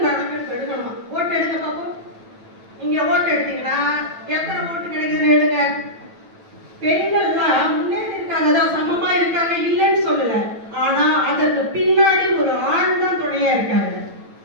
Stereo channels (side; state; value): left; late; 9.1 ms